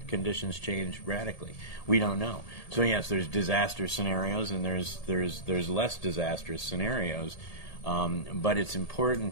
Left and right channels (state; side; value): late; right; 1.8 ms